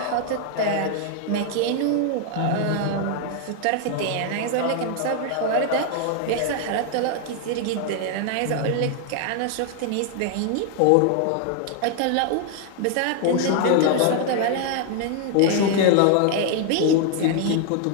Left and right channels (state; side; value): different; both; correlation 0.00